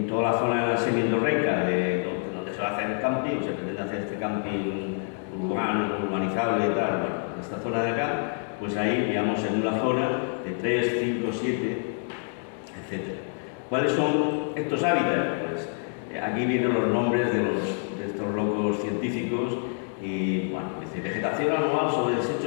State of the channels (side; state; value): right; silent; 57 dB below the other